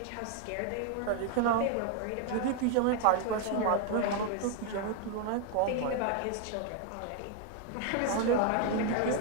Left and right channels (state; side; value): different; both; correlation 0.00